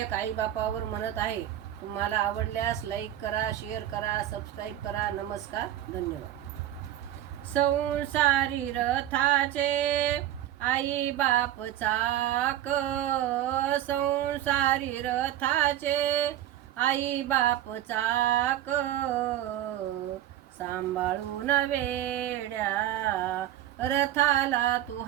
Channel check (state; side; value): quieter; left; 12.4 dB